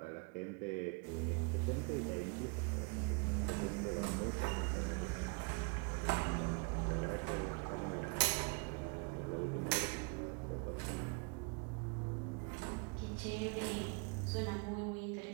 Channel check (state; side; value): quieter; left; 30.7 dB